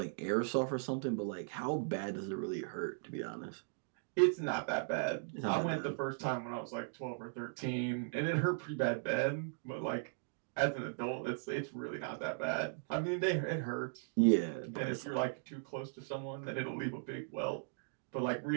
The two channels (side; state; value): left; silent; digital silence